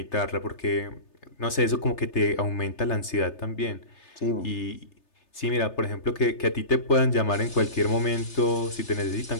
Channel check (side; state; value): right; late; 3.3 ms